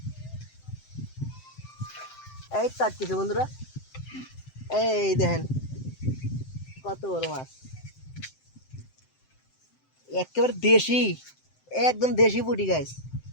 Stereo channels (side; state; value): right; late; 7.7 ms